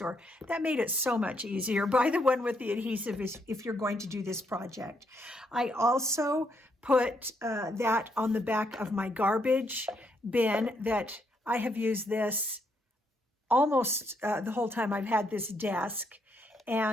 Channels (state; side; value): normal; both; correlation 0.75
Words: That made it so much easier. Buy the one with the adhesive if you're going to do this project. I also put that on the back of my garbage bin that I have used this almost the whole time I've had this desk.